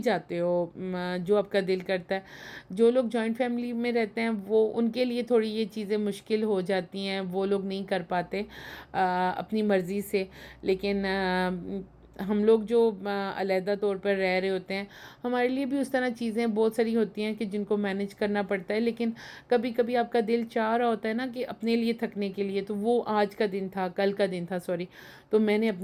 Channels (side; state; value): both; identical; correlation 1.00